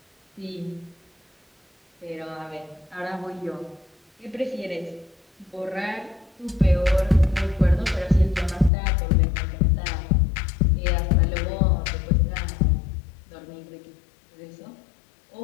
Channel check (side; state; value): right; drops out; at 8.7 s